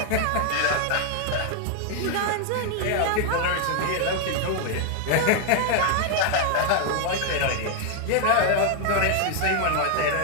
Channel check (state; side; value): different; both; correlation 0.00